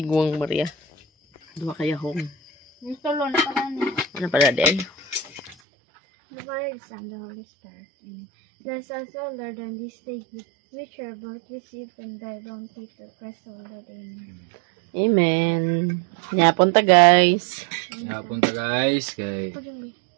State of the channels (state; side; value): drops out; left; at 5.6 s